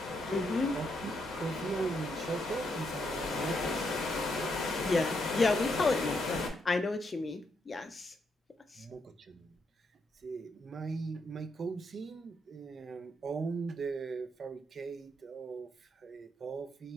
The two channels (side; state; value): both; normal; correlation 0.78